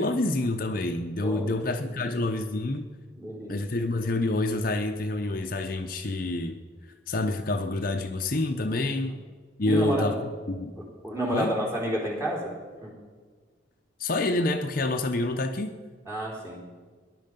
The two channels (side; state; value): both; normal; correlation 0.57